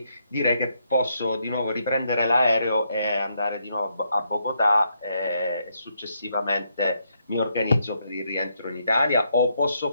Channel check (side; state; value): both; inverted; correlation -0.77